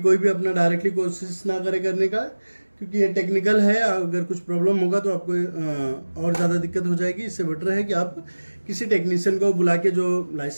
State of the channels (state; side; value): inverted; both; correlation -1.00